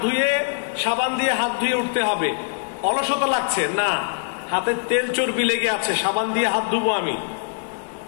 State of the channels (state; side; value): silent; right; digital silence